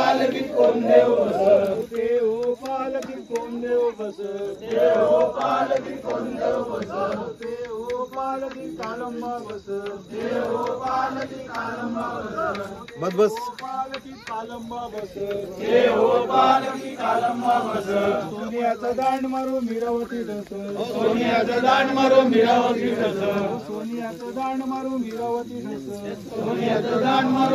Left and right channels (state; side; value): identical; both; correlation 1.00